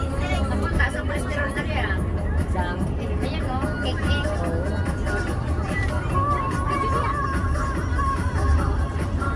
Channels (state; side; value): identical; both; correlation 1.00